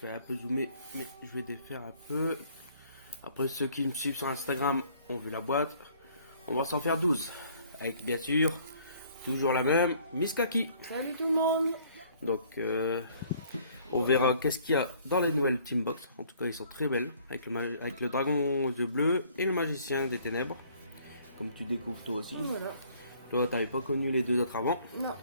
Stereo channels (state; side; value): inverted; both; correlation -0.59